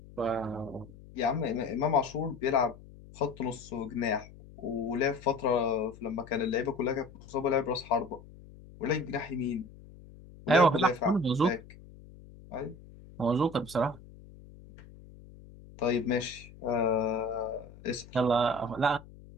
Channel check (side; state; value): left; noise; hum, 20 dB below the sound